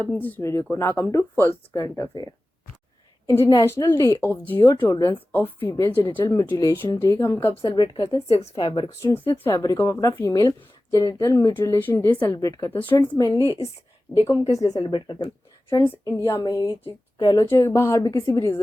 अपनी इस वीडियो को। Now come to first current affair. International day of zero tolerance of female genital mutilation day हम कब सेलिब्रेट करते हैं? 6 फरवरी को। स्टूडेंट 6 फरवरी को हम अपना female genital mutilation day celebrate करते हैं। स्टूडेंट्स, मेनली इस डे को हम किस लिए सेलिब्रेट करते हैं? स्टूडेंट्स, इंडिया में ही कह लो चाहे बाहर भी किसी भी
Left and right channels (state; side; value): normal; both; correlation 0.96